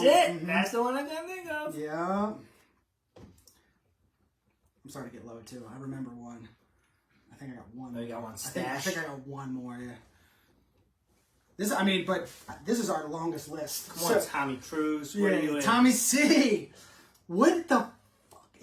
it. Mm-hmm. That's the one I can think of. Yeah. I'm starting to get low, too. I remember one. I think I got one. Oh, you got one I stash? think I got one more, yeah. This is our longest list. Come on, Tommy Cruise. Where are you in? Tommy C. What the fuck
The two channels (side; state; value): both; identical; correlation 1.00